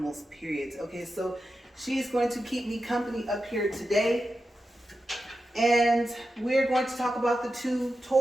period. Okay, so she's going to keep me company up here today. And we're going to talk about the 2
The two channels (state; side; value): normal; both; correlation 0.90